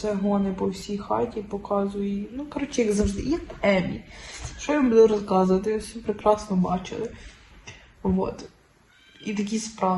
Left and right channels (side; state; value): both; identical; correlation 1.00